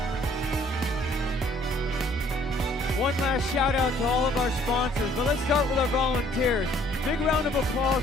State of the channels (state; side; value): normal; both; correlation 0.60